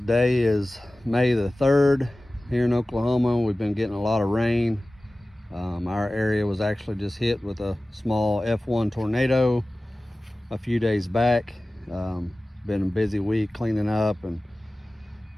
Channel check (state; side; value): normal; both; correlation 0.97